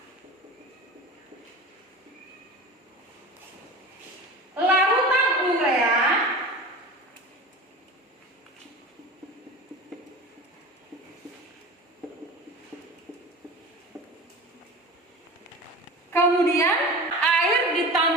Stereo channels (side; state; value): both; normal; correlation 0.34